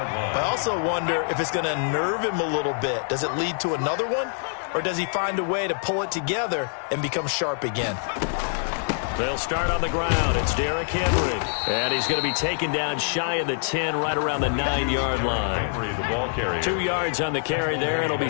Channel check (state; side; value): silent; right; 62 dB below the other